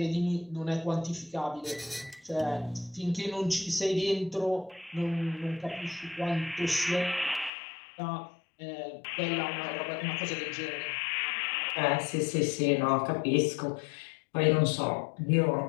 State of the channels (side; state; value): right; drops out; at 7.5 s